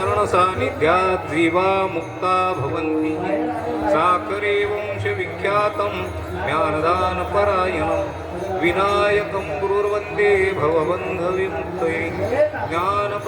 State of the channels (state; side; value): identical; both; correlation 1.00